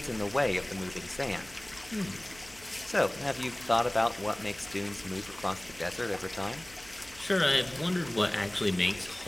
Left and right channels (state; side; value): noise; right; hum, 22 dB below the sound